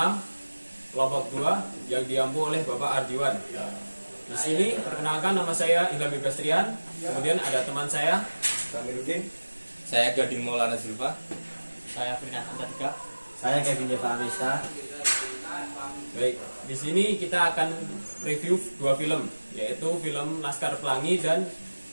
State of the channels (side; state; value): both; inverted; correlation -1.00